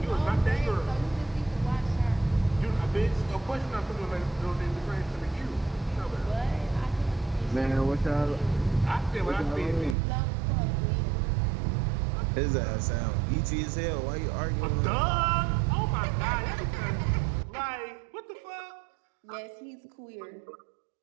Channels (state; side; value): drops out; left; at 10.0 s